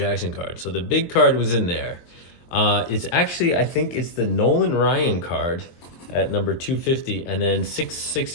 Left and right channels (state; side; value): late; right; 23 ms